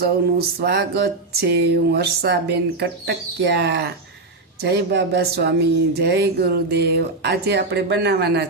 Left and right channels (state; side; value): quieter; left; 3.3 dB